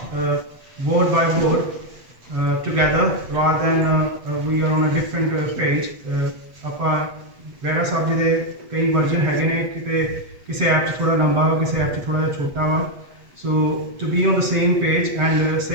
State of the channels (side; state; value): left; late; 7.8 ms